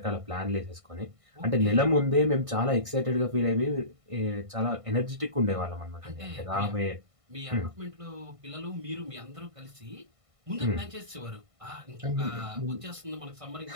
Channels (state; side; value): late; left; 1.5 ms